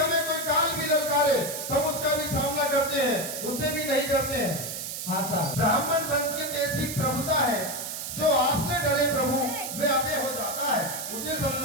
कोई काल भी ललकारे तो हम उसका भी सामना करते हैं, उससे भी नहीं डरते हैं। हाँ साहब ब्राह्मण वंश की तो ऐसी प्रभुता है, जो आपसे डरे प्रभु वे अभय हो जाता है, उसे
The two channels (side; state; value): right; noise; hiss, 6 dB below the sound